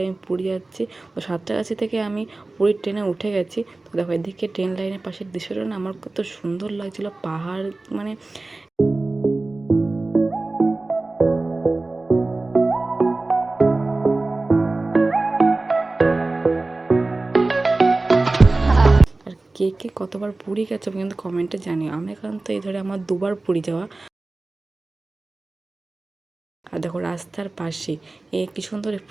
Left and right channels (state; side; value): quieter; left; 3.2 dB